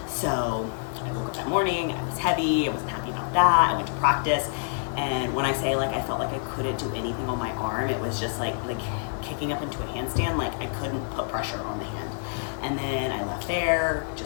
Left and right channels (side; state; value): right; silent; digital silence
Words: So I woke up that morning, I was heavy, I wasn't happy about that. I went to practice, and when I say like I felt like I couldn't do anything on my arm, it was just like kicking up into a handstand, like I couldn't put pressure on the hand. And then I left there